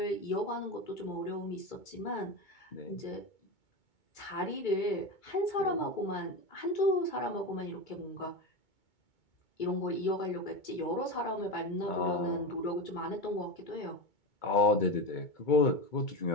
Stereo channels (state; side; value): late; right; 2.2 ms